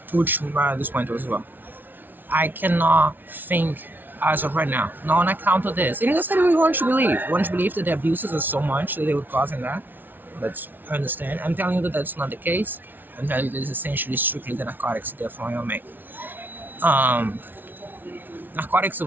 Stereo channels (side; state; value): left; late; 0.090 ms